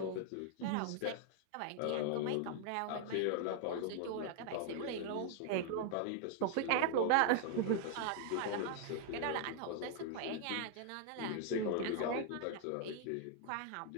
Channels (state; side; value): different; both; correlation 0.00